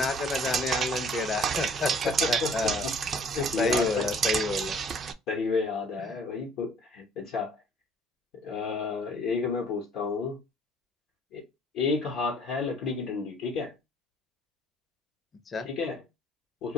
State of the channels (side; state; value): both; normal; correlation 0.56